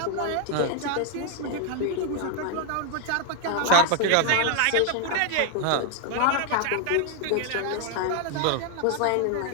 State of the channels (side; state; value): both; different; correlation 0.00